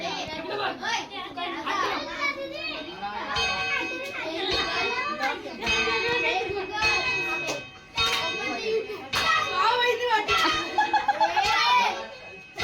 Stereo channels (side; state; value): both; identical; correlation 1.00